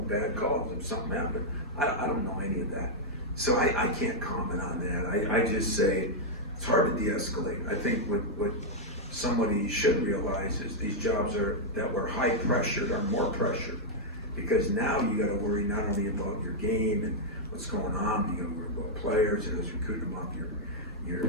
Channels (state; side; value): normal; both; correlation -0.04